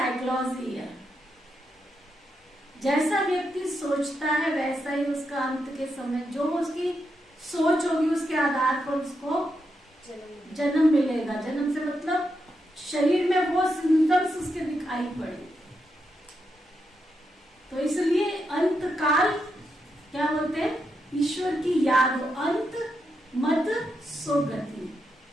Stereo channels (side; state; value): both; normal; correlation 0.83